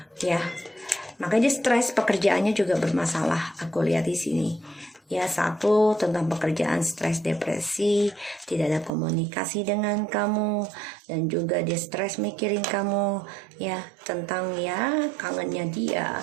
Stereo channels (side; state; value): left; drops out; at 8.9 s